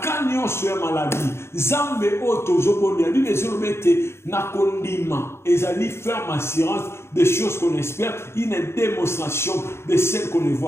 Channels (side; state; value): right; late; 0.12 ms